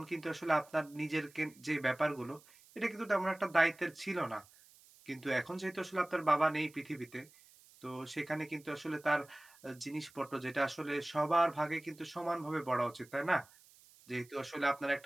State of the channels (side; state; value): right; noise; hiss, 25 dB below the sound